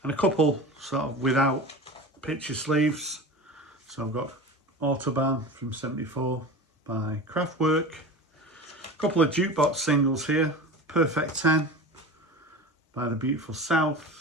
And a couple sort of without picture sleeves. So I've got Autobahn from 74 by Kraftwerk. A couple of jukebox singles here. Perfect 10 by The Beautiful South.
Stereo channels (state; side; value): normal; both; correlation 0.31